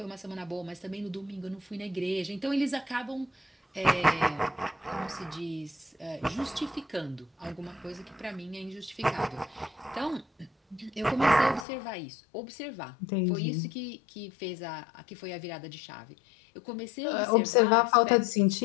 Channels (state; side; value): drops out; right; at 11.7 s